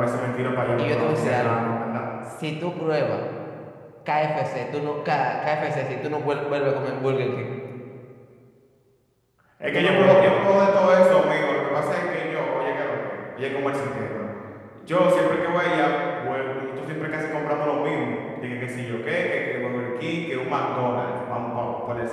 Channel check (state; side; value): identical; both; correlation 1.00